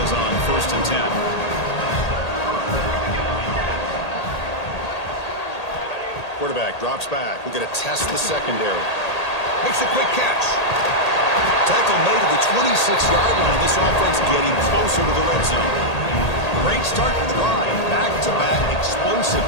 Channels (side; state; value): right; late; 1.8 ms